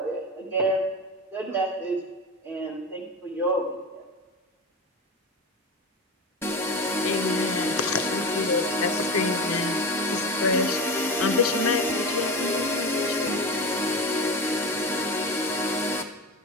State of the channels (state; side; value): normal; both; correlation 0.24